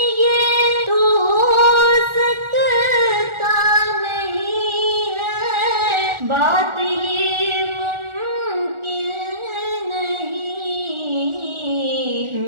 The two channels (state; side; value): late; left; 1.4 ms